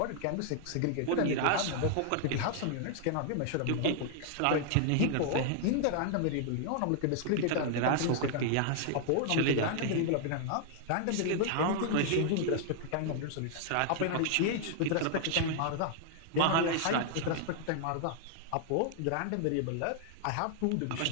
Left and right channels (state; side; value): different; both; correlation -0.01